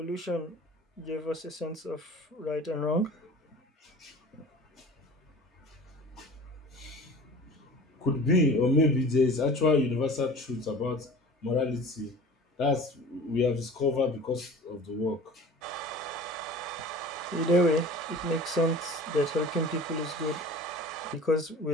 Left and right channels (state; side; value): normal; both; correlation 0.41